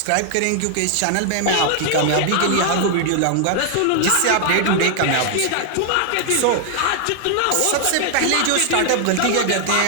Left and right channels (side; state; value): both; different; correlation 0.00